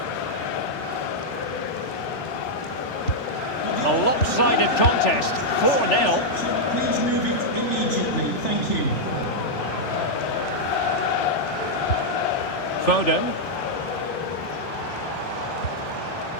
A lopsided contest, 4-0. Please move it immediately. Thank you. Foden.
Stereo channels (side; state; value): right; late; 3.4 ms